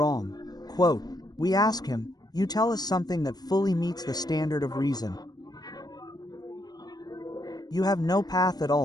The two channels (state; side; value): late; right; 0.19 ms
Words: Quote, we ask him, you tell us something that fully meets the standard of reason. You have no path at